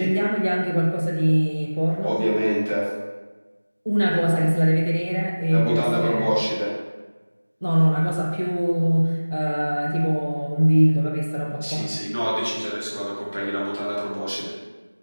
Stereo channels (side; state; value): both; inverted; correlation -1.00